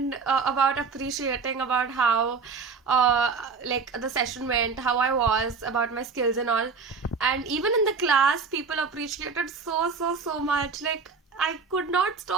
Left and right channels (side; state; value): left; quieter; 5.0 dB